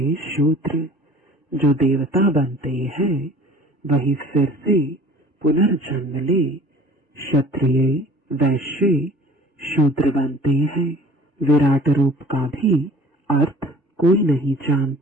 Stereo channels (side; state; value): both; normal; correlation 0.47